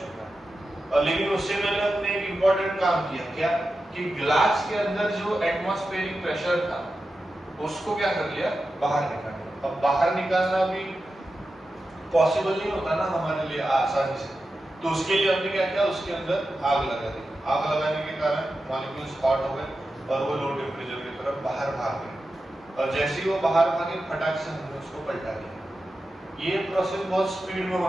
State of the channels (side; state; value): both; normal; correlation 0.91